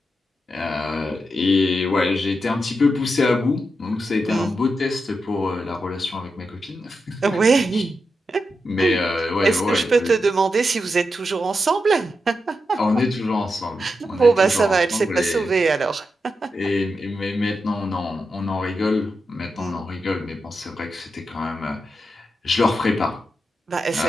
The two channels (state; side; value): normal; both; correlation 0.87